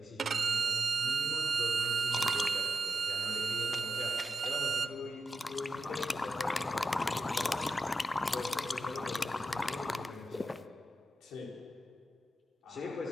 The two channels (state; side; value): normal; both; correlation 0.87